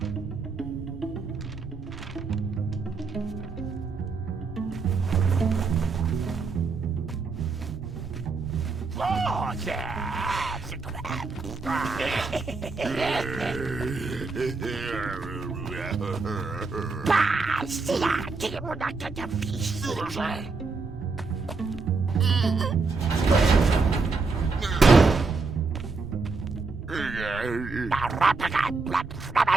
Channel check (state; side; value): quieter; left; 4.1 dB